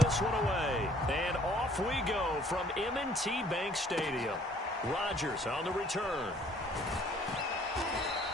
this one away. And off we go from M&T Bank Stadium. Rodgers on the return.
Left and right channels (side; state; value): both; normal; correlation 0.59